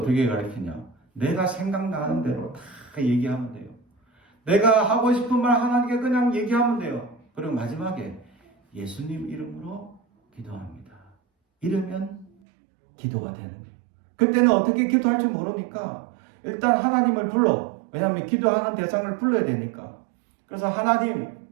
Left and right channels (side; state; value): left; drops out; at 12.3 s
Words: 가르치냐? 내가 생각나는 대로 다 얘기하면 돼요. 내가 하고 싶은 말 하나님께 그냥 얘기하면 돼요. 그리고 마지막에 예수님 이름으로 기도합니다. 이러면 기도가 되는 거예요. 그때는 어떻게 기도할지 모르니까 일단 하나님을 불러. 왜냐하면 기도하는 대상을 불러야 되니까. 그래서 하나님